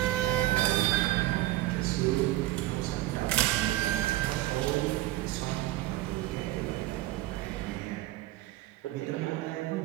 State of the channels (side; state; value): left; quieter; 16.7 dB